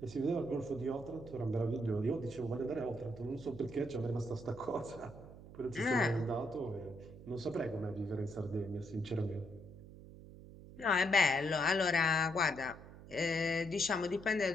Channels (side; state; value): right; noise; hum, 16 dB below the sound